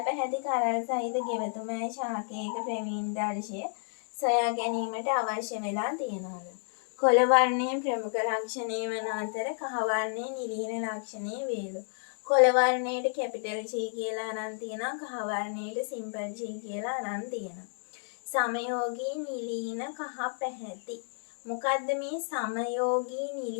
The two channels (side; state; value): right; silent; 57 dB below the other